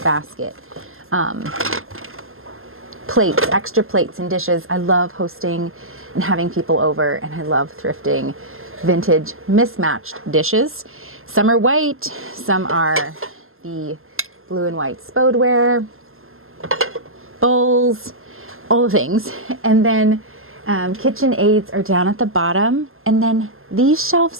basket. Plates, extra plates and dishes. I love hosting and having people over, and I love thrifting vintage mismatched dishes. Some are white, some are the blue and white spodeware, bowls, all the things. And then KitchenAids are down at the bottom, and then these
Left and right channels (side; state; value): left; late; 0.61 ms